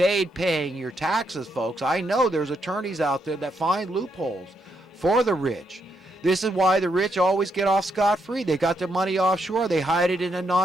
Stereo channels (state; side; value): normal; both; correlation 0.78